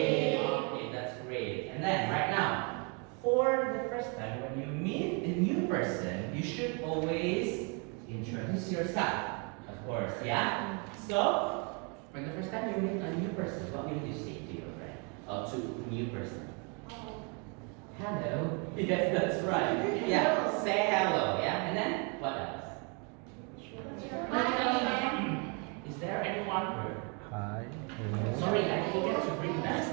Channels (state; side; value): quieter; left; 34.8 dB